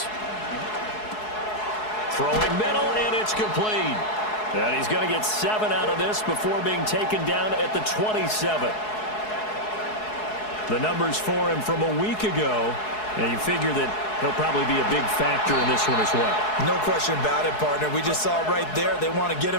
Throwing middle, and it's complete. And he's going to get 7 out of this before being taken down at the 27. The numbers for him from a week ago, and you figure that he'll probably be a big factor in this one as well. No question about it, partner. We just saw it right there. They want to get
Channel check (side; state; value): right; late; 4.7 ms